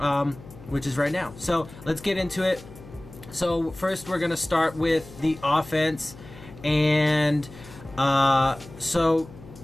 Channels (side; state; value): left; noise; hum, 18 dB below the sound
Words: which is right now. So let's get into it. So first we're going to start with the offense. And so,